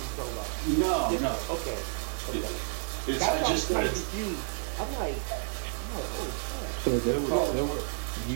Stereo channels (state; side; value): silent; left; digital silence